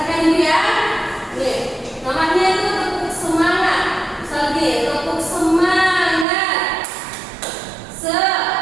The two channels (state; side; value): drops out; left; at 6.2 s